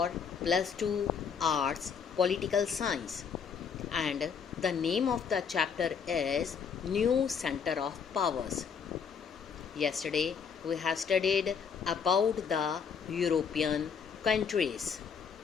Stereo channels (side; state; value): right; quieter; 6.5 dB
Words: plus 2 arts political science, and the name of the chapter is New Center of Powers. Yesterday we have studied about the European countries.